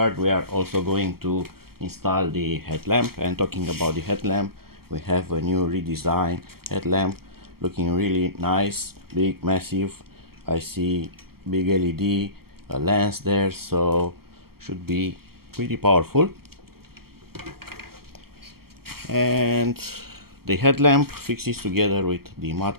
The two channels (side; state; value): left; late; 0.95 ms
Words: we are also going to install the headlamp. And talking about the headlamp, we have a new redesigned headlamp looking really nice, big, massive. I see big LED, a lens there, so should be pretty powerful. And the headlamp fixes together with the